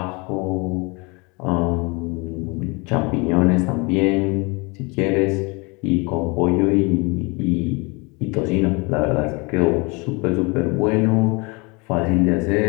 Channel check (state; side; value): quieter; right; 28.4 dB